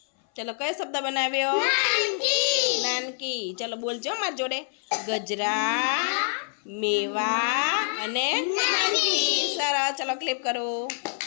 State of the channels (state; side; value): silent; right; 59 dB below the other